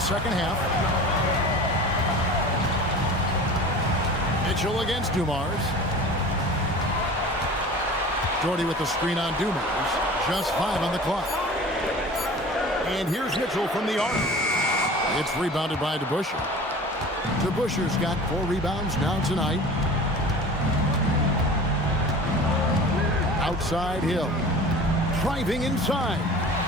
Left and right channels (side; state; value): both; normal; correlation 0.39